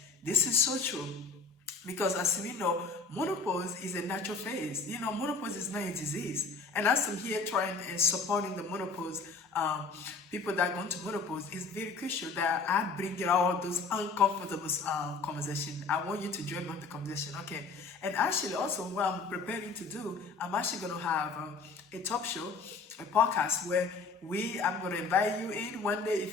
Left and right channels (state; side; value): quieter; right; 4.3 dB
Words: This is so true. Because as we know, menopause is a natural phase. Menopause is not a disease. And as I'm here trying and supporting the menopause, people that go into menopause, it's very crucial that I bring all those uncomfortable conversations. I want you to join on the conversation, okay? And actually also what I'm preparing to do, I'm actually going to have a talk show, a podcast where I'm going to invite you in one day.